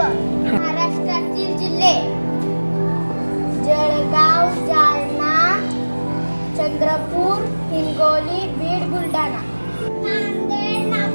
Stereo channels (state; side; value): inverted; both; correlation -1.00